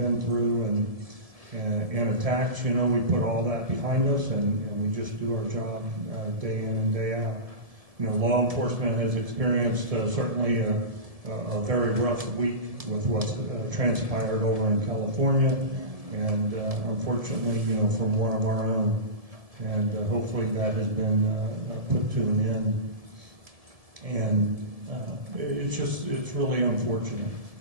through and attacks, you know, we put all that behind us and we just do our job day in and day out. You know, law enforcement has experienced certainly a very rough week with what's transpired over in California, and unfortunately, you know, from one of our own. And hopefully that has been put to an end. And it's really unfortunate.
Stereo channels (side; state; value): left; late; 1.7 ms